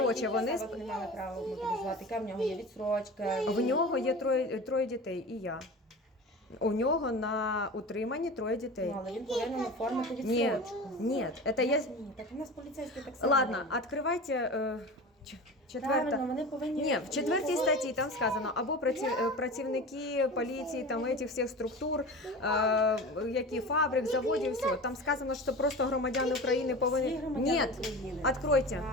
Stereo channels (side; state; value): both; normal; correlation 0.33